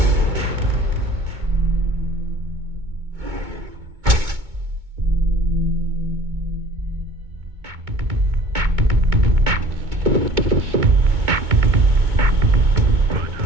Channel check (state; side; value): late; left; 2.2 ms